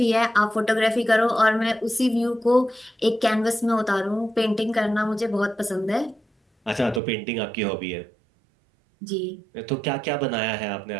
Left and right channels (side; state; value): left; drops out; at 7.0 s